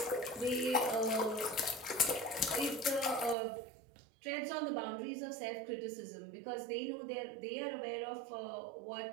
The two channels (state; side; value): drops out; left; at 3.4 s